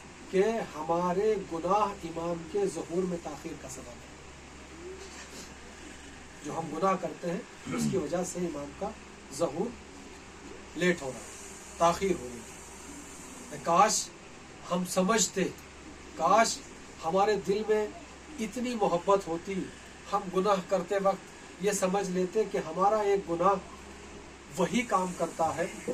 कि हमारे गुनाह इमाम के ज़ुहूर में ताख़ीर का सबब है। जो हम गुनाह करते हैं उसकी वजह से इमाम का ज़ुहूर लेट हो रहा है, ताख़ीर हो रही है। काश हम समझते, काश हमारे दिल में इतनी मोहब्बत होती, हम गुनाह करते वक्त ये समझ लेते कि हमारा एक गुनाह वही काम करता है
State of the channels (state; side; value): identical; both; correlation 1.00